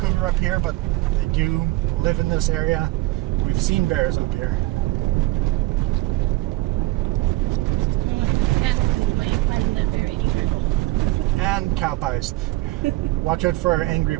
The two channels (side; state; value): left; quieter; 18.7 dB